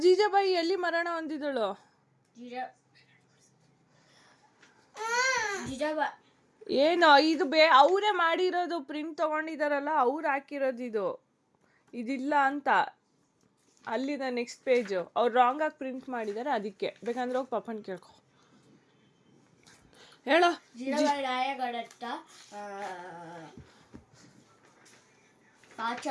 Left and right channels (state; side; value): identical; both; correlation 1.00